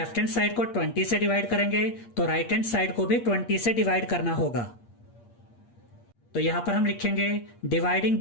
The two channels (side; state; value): right; late; 8.6 ms